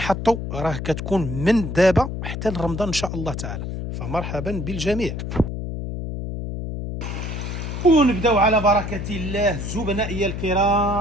راه كتكون من دابا حتى لرمضان ان شاء الله تعالى، فمرحبا بالجميع. ونبداو على بركة الله زبنائي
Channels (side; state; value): left; noise; hum, 5 dB below the sound